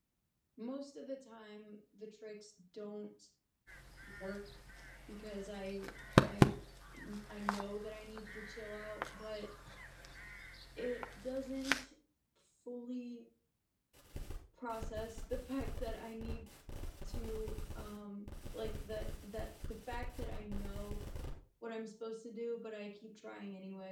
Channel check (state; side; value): identical; both; correlation 1.00